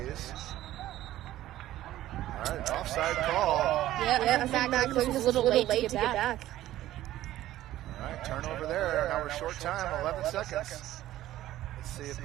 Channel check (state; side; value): quieter; left; 14.2 dB